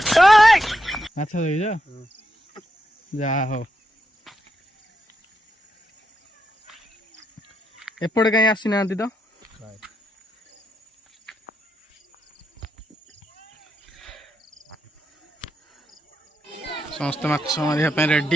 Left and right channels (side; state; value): both; normal; correlation 0.83